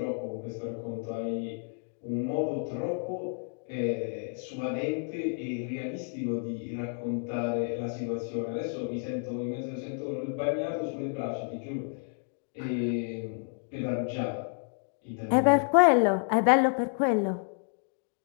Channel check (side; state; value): right; silent; 58 dB below the other